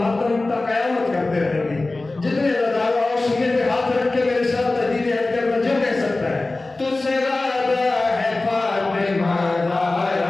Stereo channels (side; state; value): right; quieter; 3.1 dB